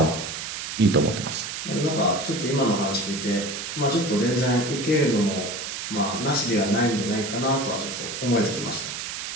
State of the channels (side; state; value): right; noise; hiss, 6 dB below the sound